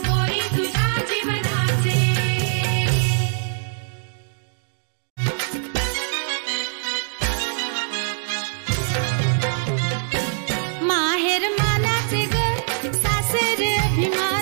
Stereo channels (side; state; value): left; silent; digital silence